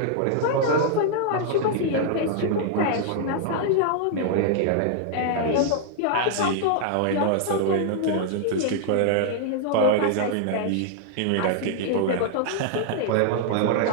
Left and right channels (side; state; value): both; different; correlation -0.01